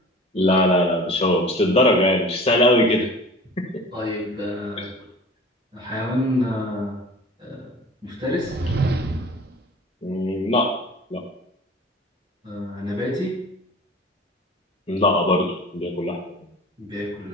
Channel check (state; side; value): normal; both; correlation 0.42